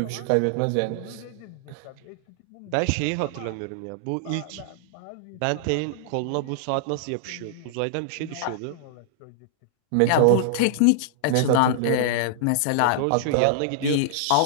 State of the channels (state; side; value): different; both; correlation -0.01